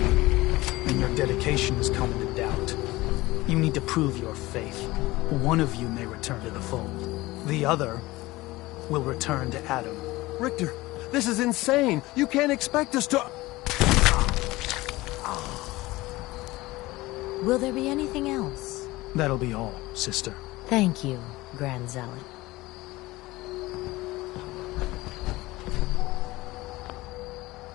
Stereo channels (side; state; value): right; quieter; 19.6 dB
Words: and your dedication is coming to doubt. You need to prove your faith. One of you may return to the fold. The other will return to Adam. Richter, this is insane. You can't expect us to... Will there be anything else? That'll be all, sister. Thank you, Grand Zealot.